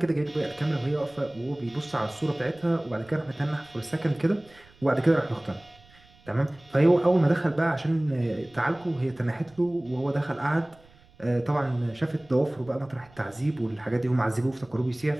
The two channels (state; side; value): noise; right; rumble, 27 dB below the sound